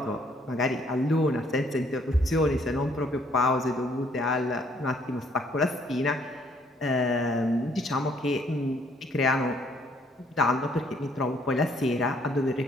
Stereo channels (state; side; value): normal; both; correlation 0.65